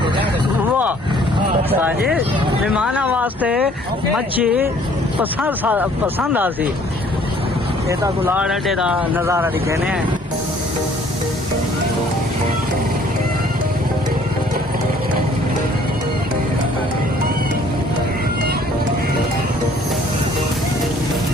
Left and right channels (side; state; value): both; normal; correlation 0.58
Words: वाह साजी मेहमाना वास्ते मच्छी पसंद आसी ये तो गुलाड़ अड्डे का नज़ारा दिखेने हैं